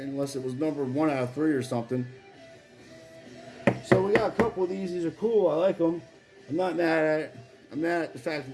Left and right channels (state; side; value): identical; both; correlation 1.00